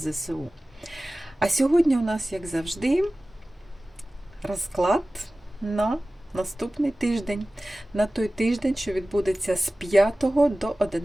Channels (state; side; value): normal; both; correlation 0.97